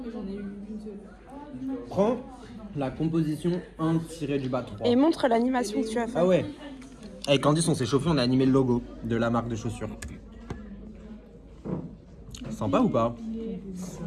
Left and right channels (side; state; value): both; identical; correlation 1.00